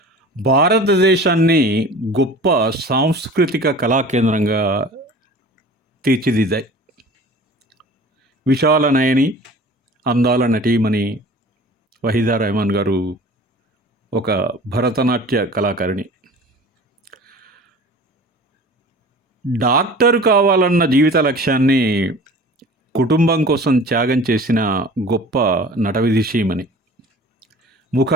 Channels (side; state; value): both; normal; correlation 0.42